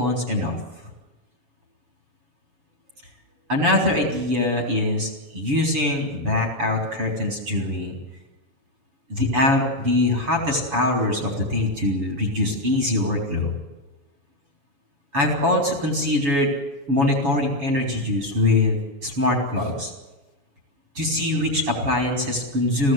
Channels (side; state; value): left; late; 7.2 ms